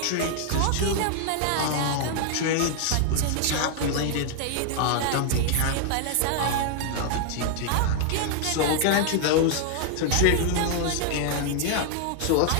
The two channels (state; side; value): different; both; correlation 0.00